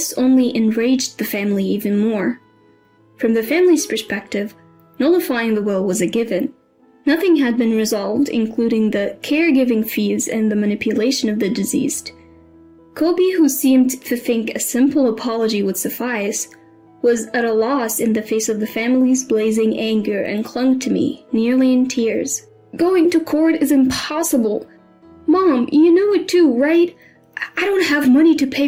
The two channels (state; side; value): identical; both; correlation 1.00